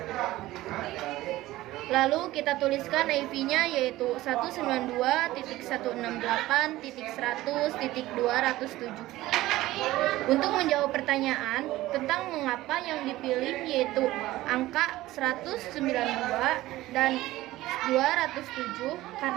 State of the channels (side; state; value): left; quieter; 16.8 dB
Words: Lalu kita tuliskan IP-nya yaitu 192.168.100.207. Untuk menjawab pertanyaan tentang mengapa yang dipilih yaitu angka 192 dan 207